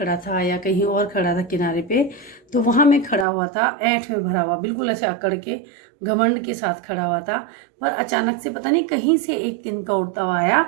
था या कहीं और खड़ा था किनारे पे, तो वहाँ मैं खड़ा हुआ था, ऐंठ में भरा हुआ, बिल्कुल ऐसे अकड़ के घमंड के साथ खड़ा हुआ था। पर अचानक से पता नहीं कहीं से एक तिनका उड़ता हुआ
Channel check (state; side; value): drops out; left; at 3.2 s